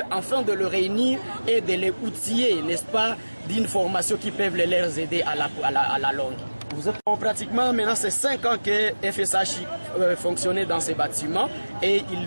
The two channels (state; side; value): inverted; both; correlation -1.00